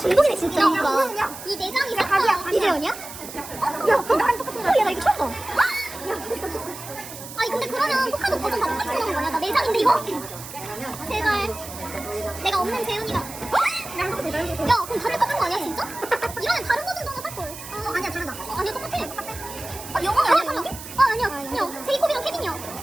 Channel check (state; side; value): noise; right; hiss, 13 dB below the sound